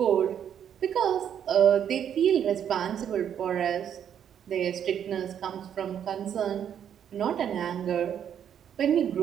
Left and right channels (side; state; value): left; quieter; 9.0 dB